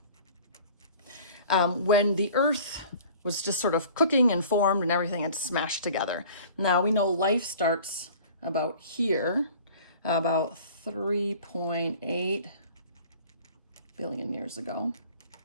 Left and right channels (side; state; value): both; inverted; correlation -0.47